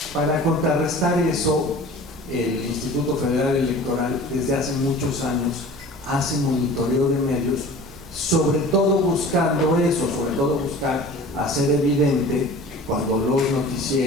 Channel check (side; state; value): both; normal; correlation 0.42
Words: para contrarrestar eso, el Instituto Federal Electoral desde hace muchos años hace monitoreo de medios, sobre todo buscando eso, sobre todo buscar hacer evidente cuando los